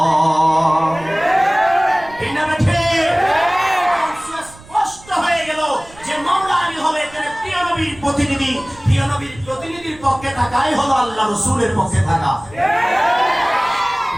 স্পষ্ট হয়ে গেল যে মাওলা আলী হলো এখানে প্রিয় নবীর প্রতিনিধি। প্রিয় নবীর প্রতিনিধির পক্ষে থাকাই হলো আল্লাহ রাসূলের পক্ষে থাকা।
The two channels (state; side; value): noise; right; rumble, 21 dB below the sound